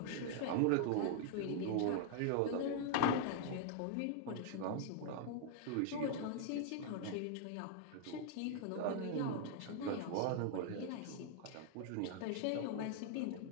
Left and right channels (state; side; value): different; both; correlation 0.00